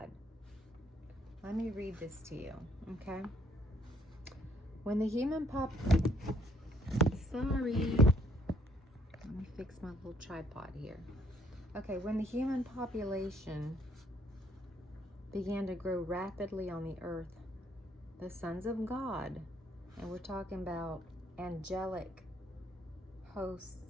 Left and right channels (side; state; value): both; normal; correlation 0.66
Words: Let me read this to you, okay? When the human Sorry. Let me fix my little tripod here. Okay, when the human population began to grow rapidly on the earth, the sons of God, and we're talking about angelic